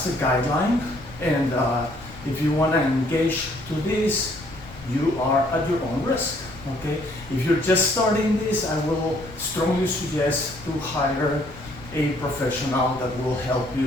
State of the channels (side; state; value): left; noise; rumble, 17 dB below the sound